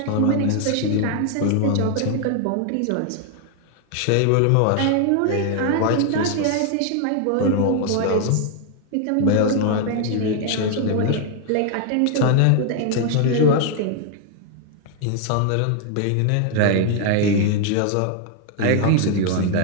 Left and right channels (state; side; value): different; both; correlation 0.00